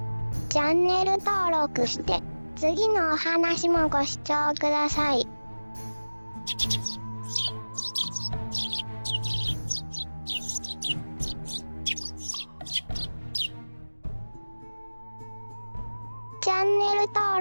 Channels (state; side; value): inverted; both; correlation -1.00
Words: チャンネル登録して次のお話もご視聴ください。チャンネル